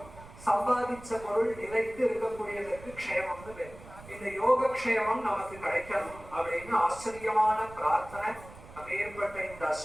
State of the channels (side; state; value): right; noise; rumble, 18 dB below the sound